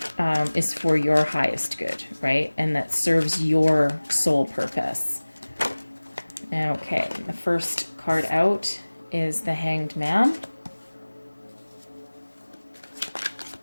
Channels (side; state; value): both; inverted; correlation -1.00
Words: is for your highest good, right? And that serves your soul purpose. Okay, the first card out is the Hanged Man.